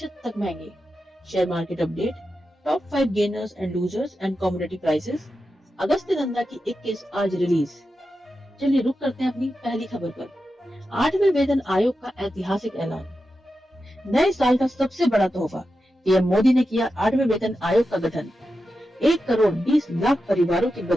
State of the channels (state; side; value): normal; both; correlation 0.90